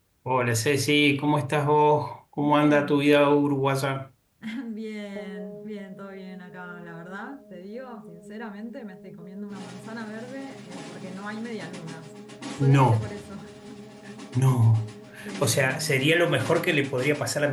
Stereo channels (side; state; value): both; identical; correlation 1.00